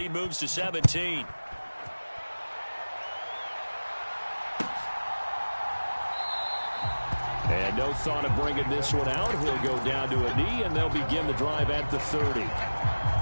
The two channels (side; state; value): both; inverted; correlation -1.00